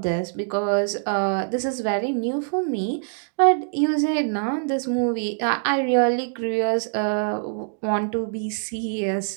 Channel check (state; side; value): silent; left; digital silence